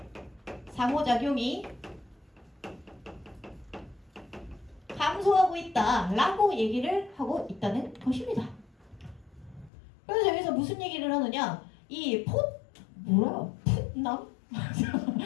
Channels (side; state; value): right; drops out; at 9.7 s